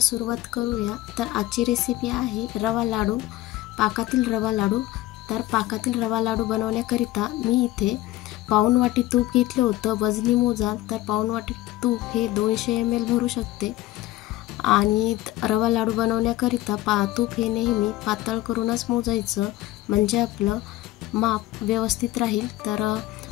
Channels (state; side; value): quieter; right; 16.0 dB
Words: करूया। तर आजची रेसिपी आहे रवा लाडू, पाकातील रवा लाडू। तर पाकातील रवा लाडू बनवण्याकरिता मी इथे पाऊण वाटी तूप घेतलं होतं। वजनी मोजाल तर पाऊण वाटी तूप हे 200 ml भरू शकते। आणि रवा लाडू बनवण्याकरिता तूप हे नेहमी पातळ करूनच मोजायचं, म्हणजे आपलं माप व्यवस्थित राहील। तर